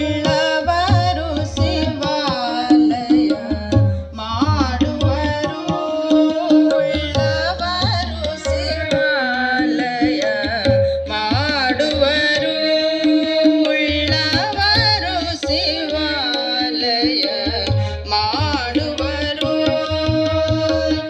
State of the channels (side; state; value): both; identical; correlation 1.00